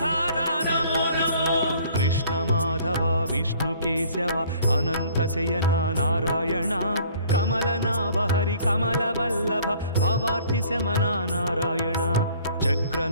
नमो नमो कृष्ण माधव विष्णु केशव अनंत शयना नारायण कमलनाभ हरि कमलवल्लभ भवार्ति शमना नारायण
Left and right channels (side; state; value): both; inverted; correlation -0.55